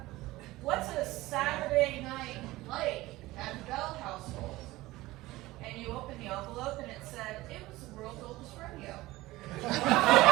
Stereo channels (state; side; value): quieter; left; 18.6 dB